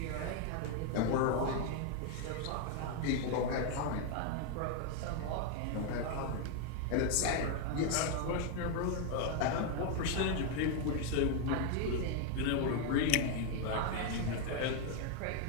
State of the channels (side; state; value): both; different; correlation 0.01